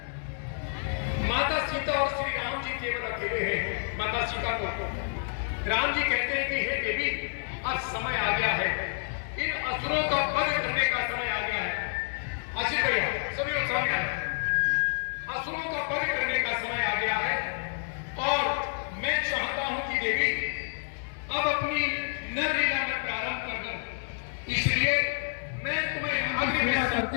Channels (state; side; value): silent; right; digital silence